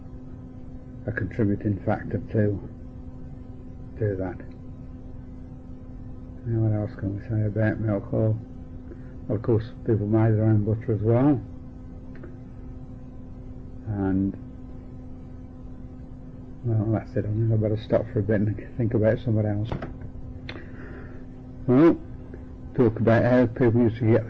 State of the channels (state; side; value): identical; both; correlation 1.00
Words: a contributing factor to that. Now, what else can we say about milk? Well, of course, people made their own butter as well, and well, that's it. I think I better stop for a bit and think about something else. Well, talk about how people used to get